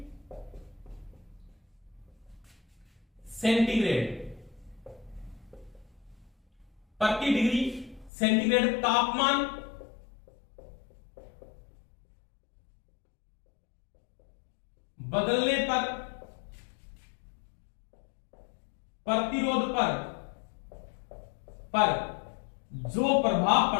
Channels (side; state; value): right; drops out; at 8.1 s